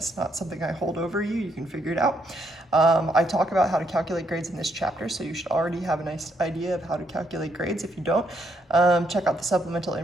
not something I hold over you. You can figure it out. I talk about how to calculate grades in this chapter, so you should already have a nice idea of how to calculate grades. If you don't, check out the supplemental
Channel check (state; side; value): normal; both; correlation 0.74